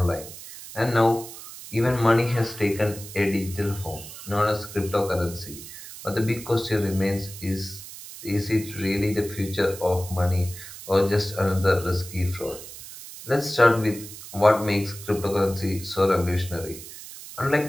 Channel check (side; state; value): right; noise; hiss, 14 dB below the sound